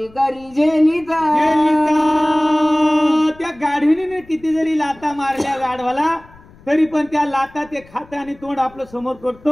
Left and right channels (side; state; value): left; noise; rumble, 25 dB below the sound